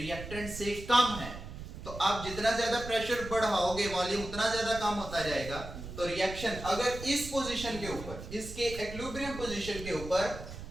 से कम है, तो आप जितना ज्यादा प्रेशर बढ़ाओगे वॉल्यूम उतना ज्यादा कम होता जाएगा। तो रिएक्शन अगर इस पोजीशन के ऊपर, इसके इक्विलिब्रियम पोजीशन के ऊपर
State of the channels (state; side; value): noise; right; rumble, 10 dB below the sound